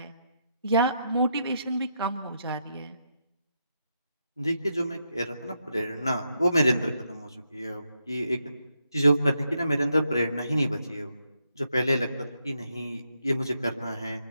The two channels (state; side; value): inverted; both; correlation -0.81